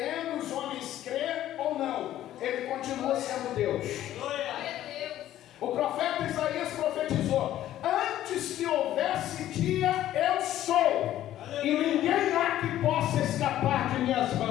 os homens crer ou não, Ele continua sendo Deus. O profeta Isaías profetizou: antes que houvesse dia, eu sou, e ninguém há que possa escapar de minhas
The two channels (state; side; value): quieter; right; 12.9 dB